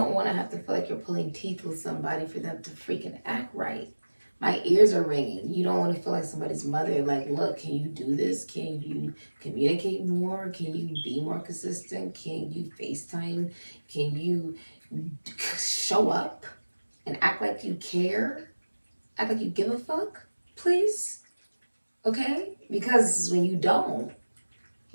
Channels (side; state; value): both; inverted; correlation -1.00